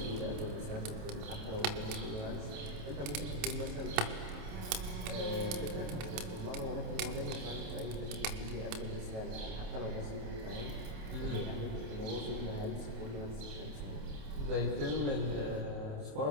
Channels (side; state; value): left; late; 28 ms